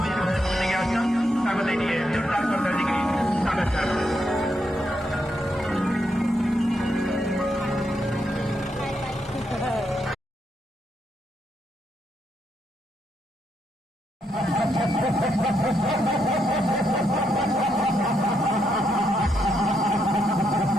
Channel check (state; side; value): normal; both; correlation 0.79